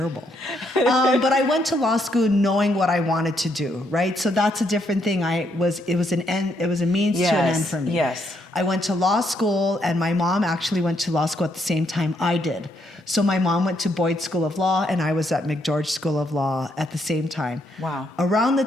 But I went to law school knowing what I wanted to do, right? So that's a different thing. It was a means to an end for me. Yes. I went to law school, and my mom actually went to law school at the same time I did. So my mom went to Boyd School of Law, and I was at McGeorge School of Law at the same time. Wow. Around the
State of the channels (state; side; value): normal; both; correlation 0.75